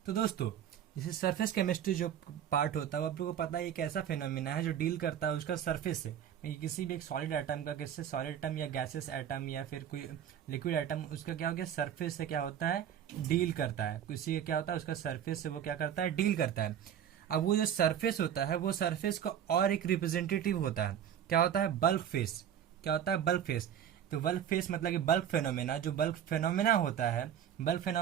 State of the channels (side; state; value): left; quieter; 9.5 dB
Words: तो दोस्तों जैसे सरफेस केमिस्ट्री जो पार्ट होता है वो आप लोगों को पता है एक ऐसा फिनोमिना है जो डील करता है उसका सरफेस से, किसी भी एक सॉलिड एटम का, किससे सॉलिड एटम या गैसेस एटम या फिर कोई लिक्विड एटम, उसका क्या हो गया सरफेस से क्या होता है, डील करता है। किसी का क्या होता है उसका सरफेस से वो क्या करता है, डील करता है। अब वो जो सरफेस होता है वो सरफेस का और एक रिप्रेजेंटेटिव होता है, क्या होता है, बल्क फेस। क्या होता है, बल्क फेस। तो बल्क फेस मतलब कि बल्क फेनोमेना, जो बल्क फेनोमेना होता है, बल्क